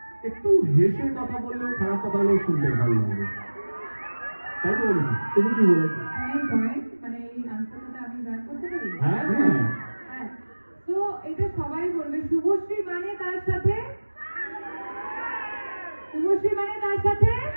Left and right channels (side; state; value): both; inverted; correlation -1.00